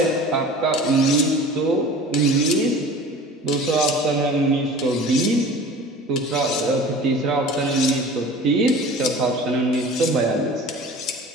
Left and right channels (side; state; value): both; normal; correlation 0.41